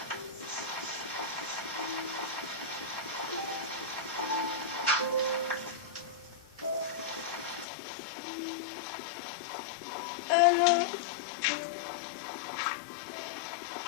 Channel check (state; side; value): drops out; right; at 7.7 s